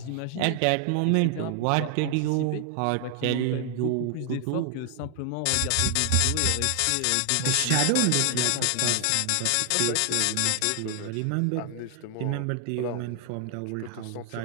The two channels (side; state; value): both; different; correlation 0.00